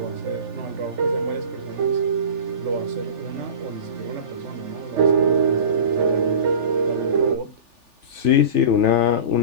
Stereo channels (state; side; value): late; left; 3.4 ms